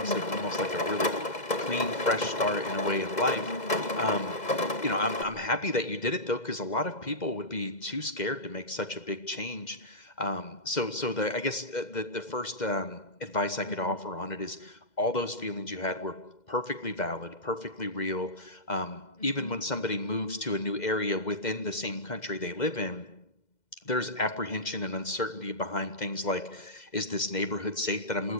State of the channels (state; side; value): late; right; 2.0 ms